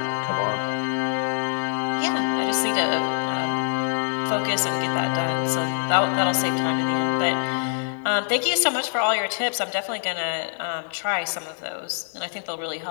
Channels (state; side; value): silent; right; digital silence